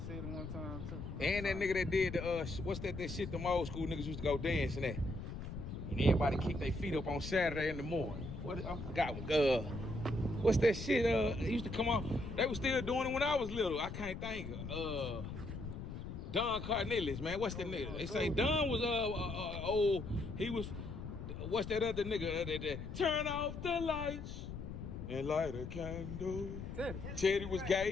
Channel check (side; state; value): left; noise; rumble, 8 dB below the sound